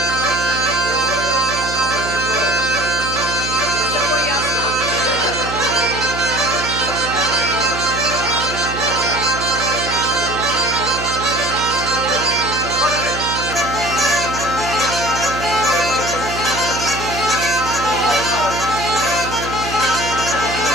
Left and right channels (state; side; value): noise; right; hum, 8 dB below the sound